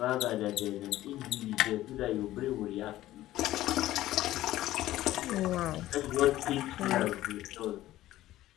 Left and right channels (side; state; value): right; quieter; 14.9 dB